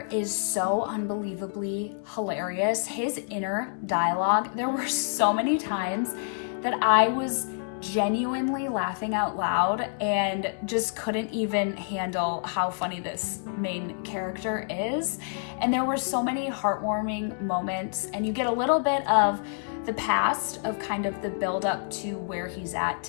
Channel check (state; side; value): silent; right; digital silence